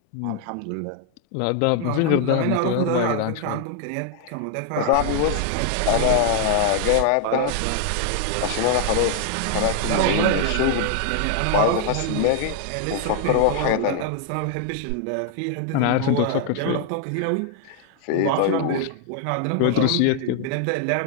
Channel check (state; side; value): different; both; correlation 0.00